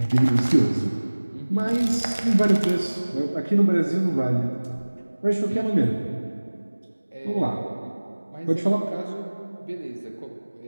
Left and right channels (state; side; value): inverted; both; correlation -1.00